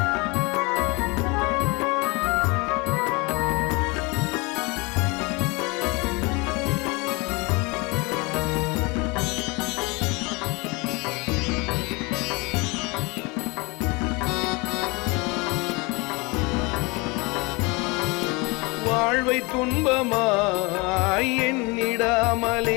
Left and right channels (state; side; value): quieter; right; 27.2 dB